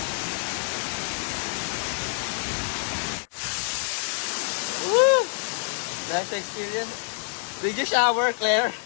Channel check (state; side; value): silent; right; 60 dB below the other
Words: Woo! Nice experience. Did you shower, Claire?